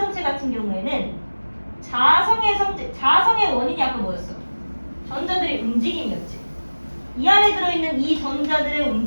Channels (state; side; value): inverted; both; correlation -1.00